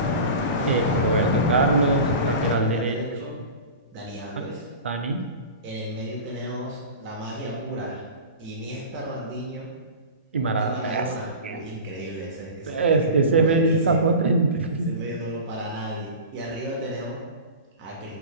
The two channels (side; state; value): both; inverted; correlation -0.33